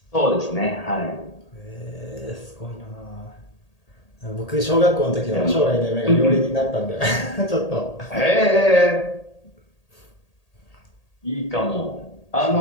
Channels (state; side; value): late; right; 1.8 ms